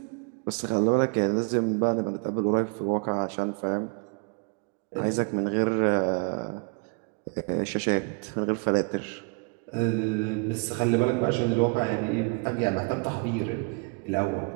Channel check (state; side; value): quieter; left; 34.0 dB